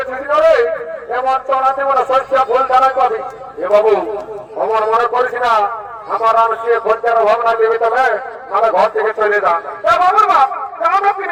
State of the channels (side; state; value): both; identical; correlation 1.00